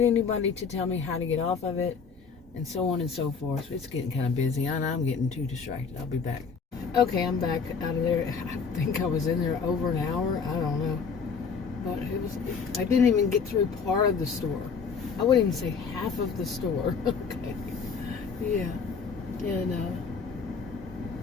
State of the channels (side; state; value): right; quieter; 5.6 dB